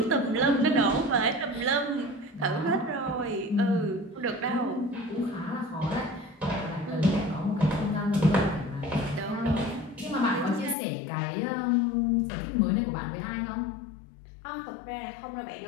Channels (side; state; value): right; drops out; at 10.8 s